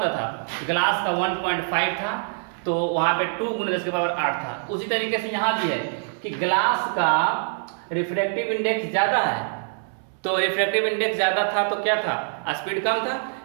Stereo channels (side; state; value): left; silent; 62 dB below the other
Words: था? ग्लास का 1.5 था, तो वहां पे 2 × 10⁸ था। उसी तरीके से यहाँ भी है कि ग्लास का रिफ्रैक्टिव इंडेक्स ज्यादा है, तो रिफ्रैक्टिव इंडेक्स ज्यादा था तो क्या था? स्पीड कम था।